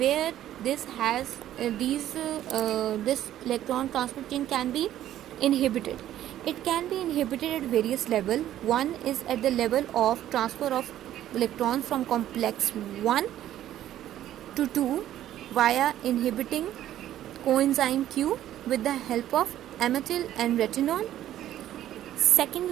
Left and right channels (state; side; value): quieter; left; 12.4 dB